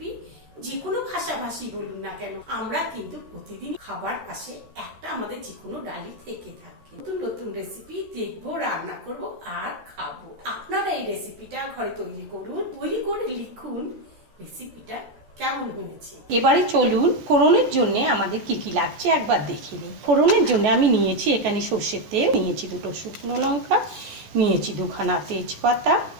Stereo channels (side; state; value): left; late; 14 ms